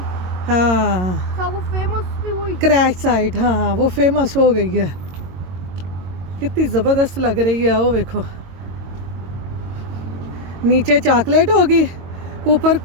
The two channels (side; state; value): left; late; 22 ms